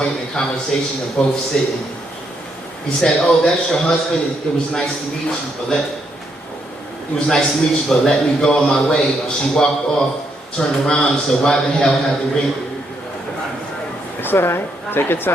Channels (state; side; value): normal; both; correlation 0.76